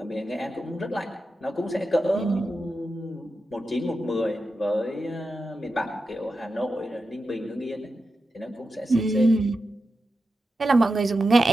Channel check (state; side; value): normal; both; correlation 0.90